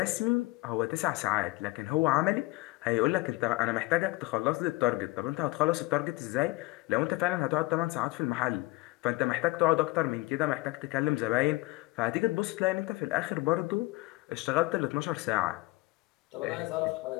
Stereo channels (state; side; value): quieter; right; 21.9 dB